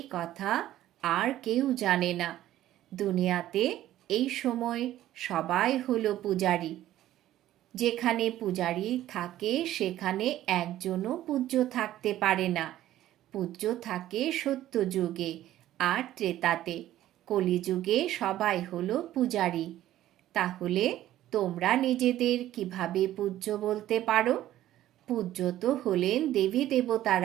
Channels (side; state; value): left; quieter; 13.6 dB